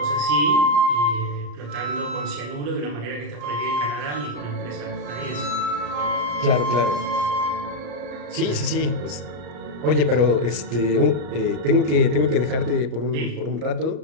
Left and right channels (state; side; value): late; left; 34 ms